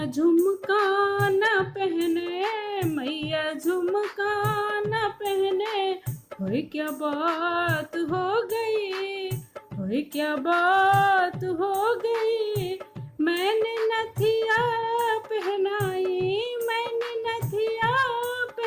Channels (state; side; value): identical; both; correlation 1.00